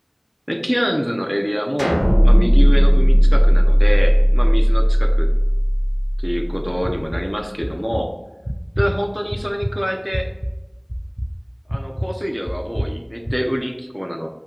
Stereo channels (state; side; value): identical; both; correlation 1.00